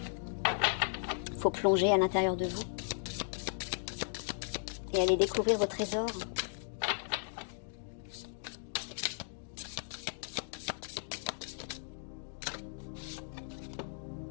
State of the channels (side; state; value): right; silent; digital silence